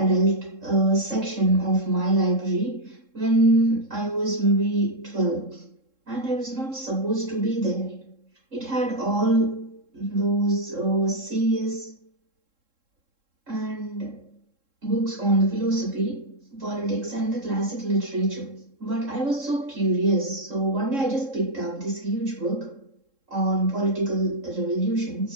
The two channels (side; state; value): left; late; 3.7 ms